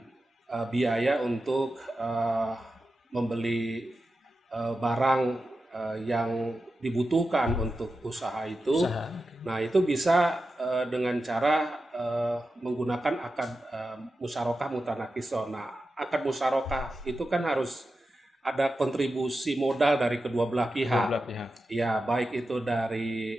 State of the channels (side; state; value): both; normal; correlation 0.91